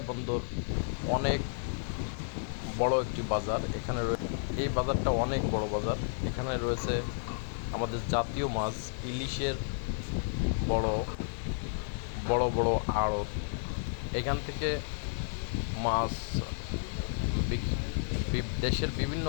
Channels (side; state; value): right; silent; digital silence